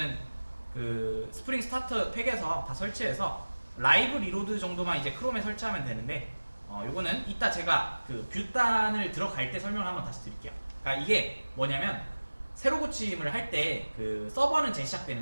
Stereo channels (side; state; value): both; inverted; correlation -1.00